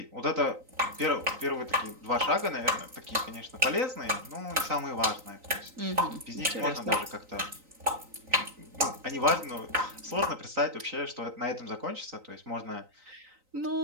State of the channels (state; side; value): late; left; 3.9 ms